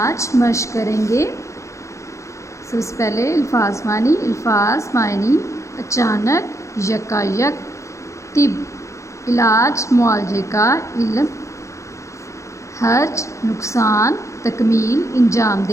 مشق کریں گے۔ سب سے پہلے الفاظ معنی اچانک، یکایک، طب علاج معالجے کا علم، حرج نقصان، تکمیل انجام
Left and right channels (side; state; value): right; late; 0.15 ms